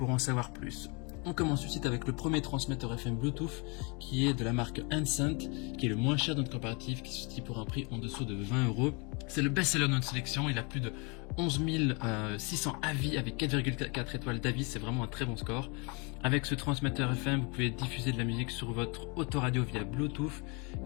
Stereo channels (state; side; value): quieter; right; 31.5 dB